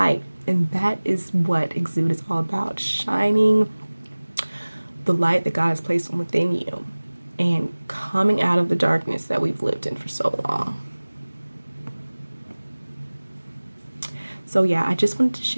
And that is what Exude is all about, shining the light that God has placed within you and coming out of the darkness that we've lived in for so long. So yeah, I just wanted to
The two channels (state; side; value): inverted; both; correlation -1.00